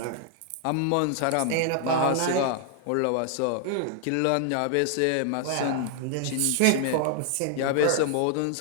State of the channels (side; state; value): both; different; correlation 0.00